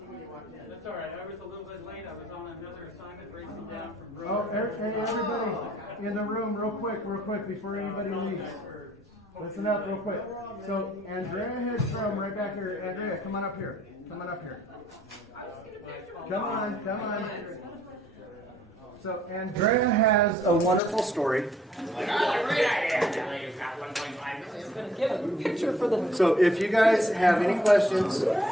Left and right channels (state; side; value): normal; both; correlation 0.63